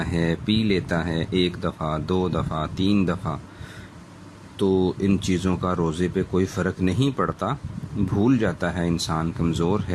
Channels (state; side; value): identical; both; correlation 1.00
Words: ہے، پی لیتا ہے، 1 دفعہ 2 دفعہ 3 دفعہ، تو ان چیزوں کا روزے پہ کوئی فرق نہیں پڑتا، بھول جاتا ہے انسان، کمزور